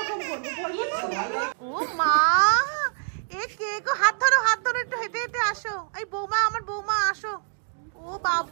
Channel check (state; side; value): silent; left; digital silence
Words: করব। ও মা, এ কে গো? হাত ধরো একটু হেঁটে হেঁটে আসো। এই বৌমা, আমার বৌমা আসো। ও